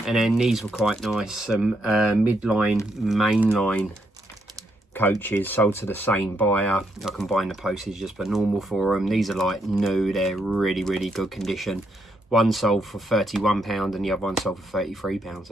And then these were quite nice, some midline, mainline coaches sold to the same buyer. I combine the postage just for normal for them. These are like new, they're really, really good condition. One sold for £31 and the other one sold for £33. So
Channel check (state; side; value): normal; both; correlation 0.77